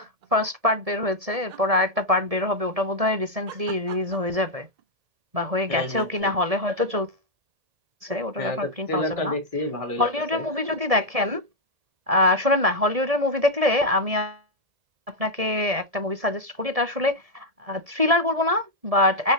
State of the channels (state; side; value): late; left; 1.7 ms